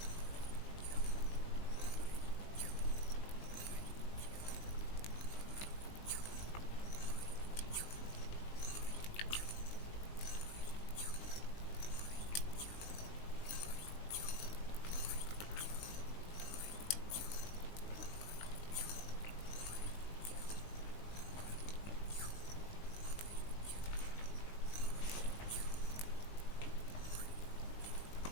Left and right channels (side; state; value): right; late; 19 ms